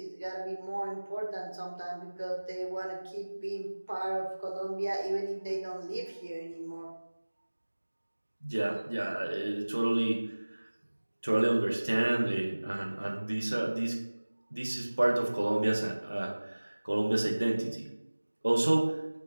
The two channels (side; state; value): both; inverted; correlation -1.00